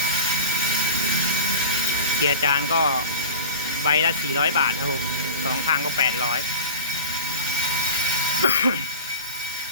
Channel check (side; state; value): both; inverted; correlation -0.34